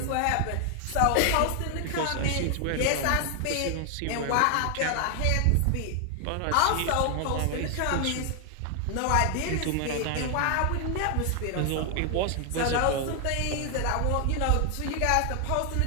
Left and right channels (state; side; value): different; both; correlation 0.00